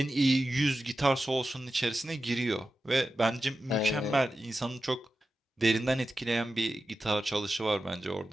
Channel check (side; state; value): both; normal; correlation 0.92